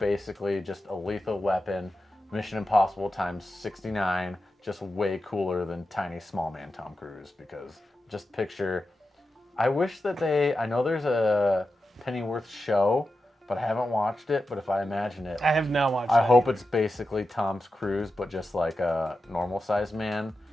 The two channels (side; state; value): both; normal; correlation 0.91